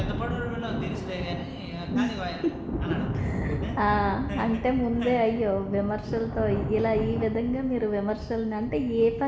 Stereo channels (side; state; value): both; identical; correlation 1.00